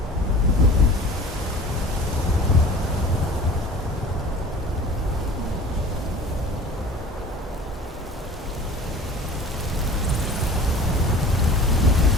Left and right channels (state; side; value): normal; both; correlation 0.43